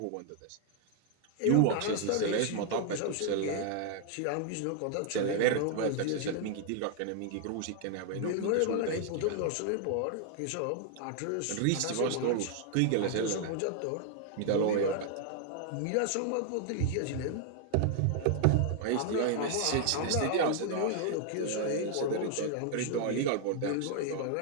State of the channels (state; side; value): different; both; correlation 0.00